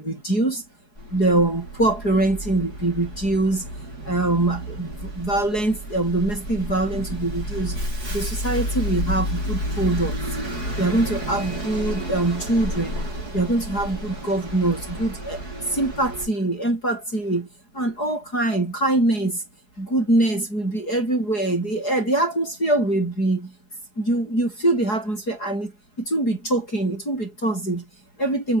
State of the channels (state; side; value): late; right; 4.8 ms